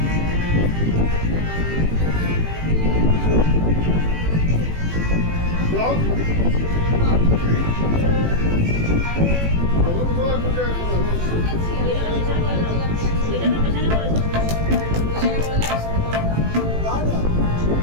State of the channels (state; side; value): late; left; 18 ms